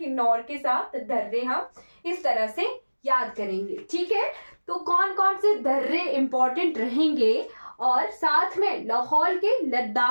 के साथ दर्रे हम इस तरह से याद करेंगे। ठीक है, तो कौन कौन से दर्रे इंपॉर्टेंट रहेंगे, और साथ में लाहौर के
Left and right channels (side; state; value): both; inverted; correlation -1.00